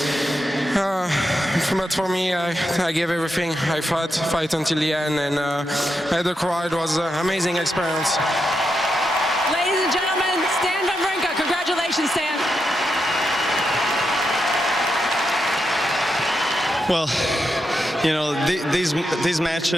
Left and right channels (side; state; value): both; normal; correlation 0.85